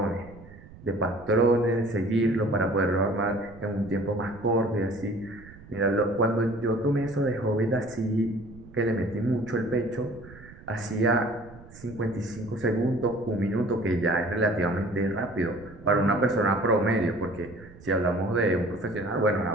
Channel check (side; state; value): right; noise; rumble, 20 dB below the sound